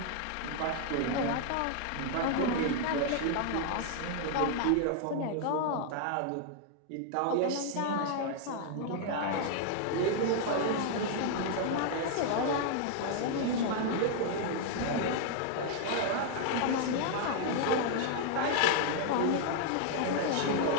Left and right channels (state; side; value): different; both; correlation 0.00